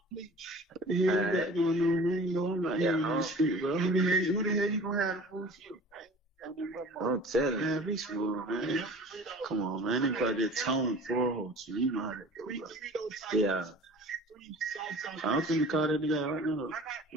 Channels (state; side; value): normal; both; correlation 0.44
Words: What the hell you got going on, man? You know, I'm not here on the street, bro. Who the hell you gonna have to fool you? don't tell him. Man, be smooth, man. Come on, man. They probably just tone for you. You know how that go, bro. Yeah. I'm finna call that nigga right now.